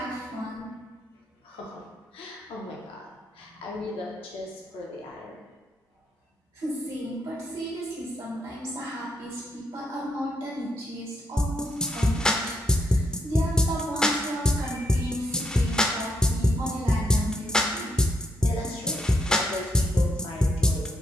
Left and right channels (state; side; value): normal; both; correlation 0.76